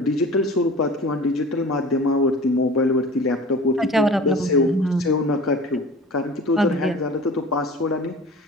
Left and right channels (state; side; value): normal; both; correlation 0.40